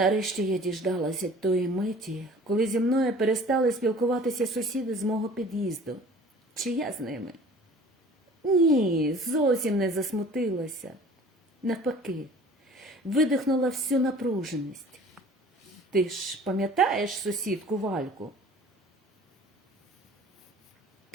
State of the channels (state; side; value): normal; both; correlation 0.47